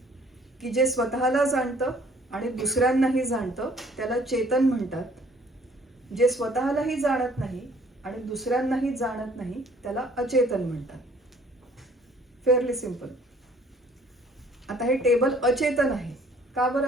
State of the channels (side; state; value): both; normal; correlation 0.58